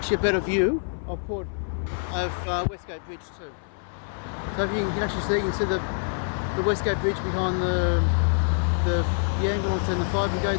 a better view of Westgate Bridge too. So if you can actually see, you can see the Westgate Bridge behind the ambulance and the fire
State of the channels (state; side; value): silent; right; 61 dB below the other